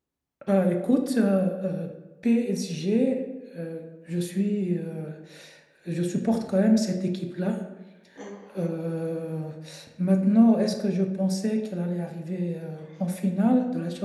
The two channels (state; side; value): identical; both; correlation 1.00